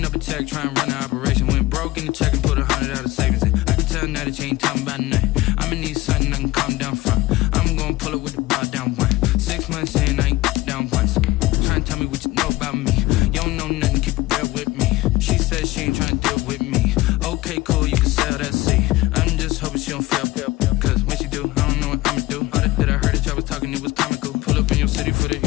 up a check, trying to run an operation. Went broke in the check and put 100 out of savings in. I can tell now that you ain't talking about nothing. I'ma need something I can calm down from. I'm gonna pull it with the bar down one. 6 months in, I ain't down once. Trying to tell me what you know about me. You don't know nothing, keep it real with me. She said she ain't trying to deal with me. Okay, cool, you can sell that seat. I'm just hoping she don't fail. Cause when she do, I don't know what I'ma do. All that I heard that y'all was talking, it was comical. Pull up in your city for the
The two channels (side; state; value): right; quieter; 18.7 dB